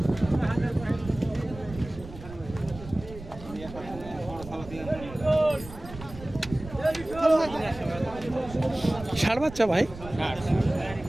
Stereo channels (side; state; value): right; noise; rumble, 14 dB below the sound